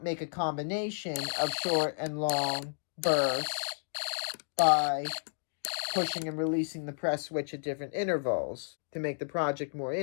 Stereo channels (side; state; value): right; silent; digital silence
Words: make a combination of short and long bursts by pushing and releasing the press switch at different intervals to make the project more